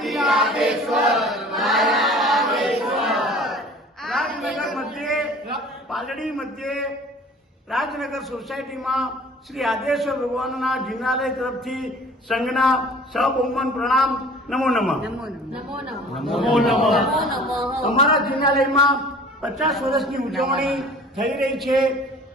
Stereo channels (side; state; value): both; normal; correlation 0.46